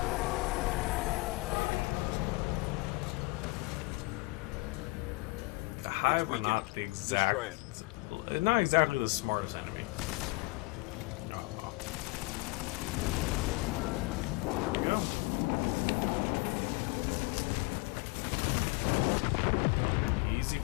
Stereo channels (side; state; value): right; quieter; 25.0 dB